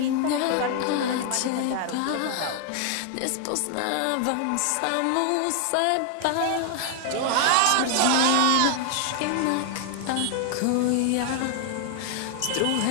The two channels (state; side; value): different; both; correlation 0.00